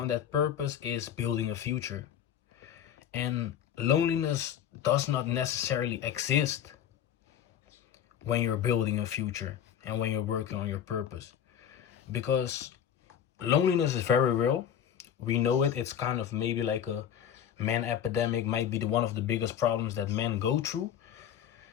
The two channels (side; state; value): right; quieter; 9.4 dB